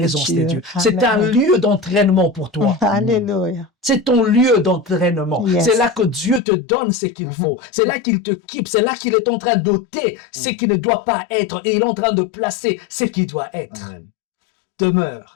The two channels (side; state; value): right; drops out; at 6.4 s